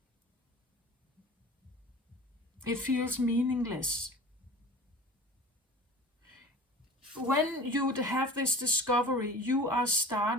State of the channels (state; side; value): normal; both; correlation 0.40